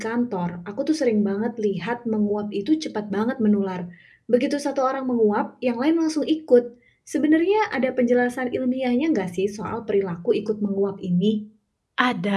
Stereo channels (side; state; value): both; identical; correlation 1.00